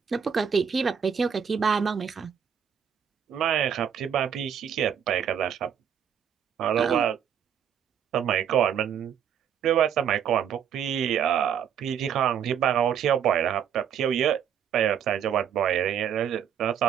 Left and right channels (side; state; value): left; quieter; 8.4 dB